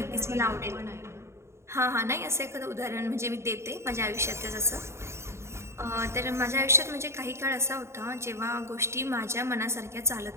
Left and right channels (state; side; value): late; left; 0.13 ms